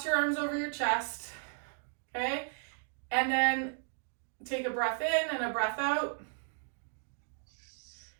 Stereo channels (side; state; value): left; silent; 55 dB below the other